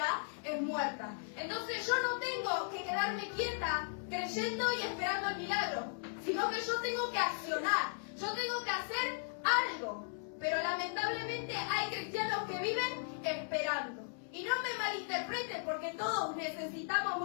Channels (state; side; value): silent; right; 53 dB below the other